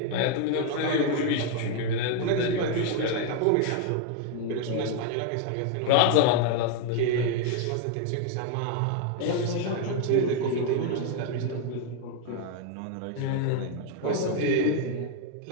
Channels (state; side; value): different; both; correlation 0.01